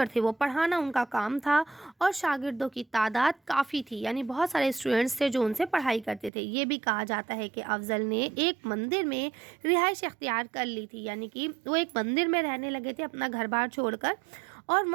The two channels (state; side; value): drops out; left; at 6.3 s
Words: थे, वो पढ़ाना उनका काम था, और शागिर्दों की तादाद काफ़ी थी, यानी बहुत सारे स्टूडेंट्स थे जो उनसे पढ़ाई करते थे। ये भी कहा जाता है कि अफजल ने एक मंदिर में रिहाइश इख्तियार कर ली थी, यानी कि वो एक मंदिर में रहने लगे थे अपना घर बार छोड़कर, और